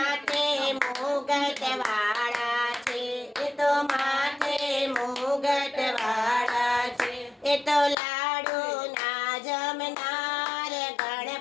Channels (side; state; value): right; drops out; at 8.0 s